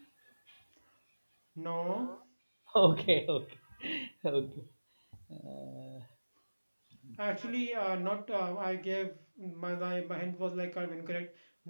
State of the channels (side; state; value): both; inverted; correlation -1.00